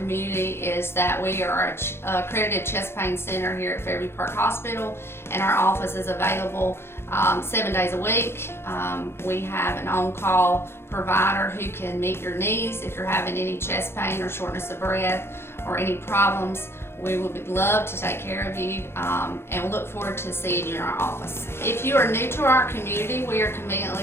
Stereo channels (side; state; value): right; late; 0.12 ms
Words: is that we are an accredited chest pain center here at Fairview Park Hospital, and our office is available 7 days a week. We have an on-call provider who can meet your needs if you're having any chest pain or shortness of breath or any problems. We would love to take care of you and look forward to seeing you in our office. If you are new to our community, we are